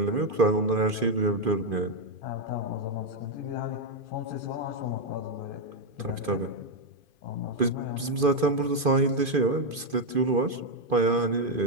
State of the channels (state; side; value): late; left; 2.5 ms